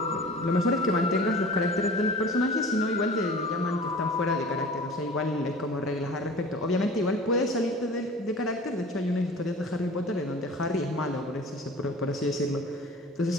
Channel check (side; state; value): both; normal; correlation 0.41